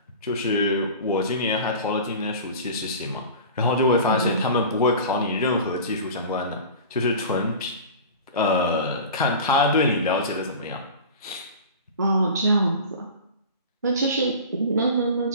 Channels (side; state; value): both; inverted; correlation -0.36